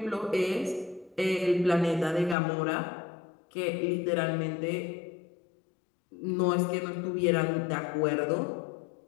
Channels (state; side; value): drops out; right; at 2.4 s